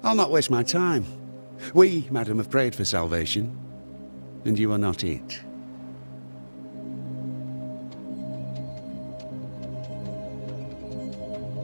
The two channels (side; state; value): both; inverted; correlation -1.00